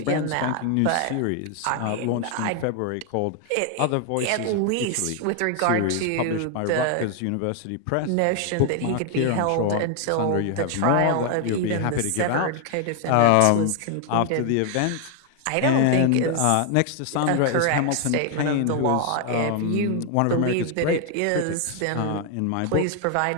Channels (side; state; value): both; different; correlation 0.00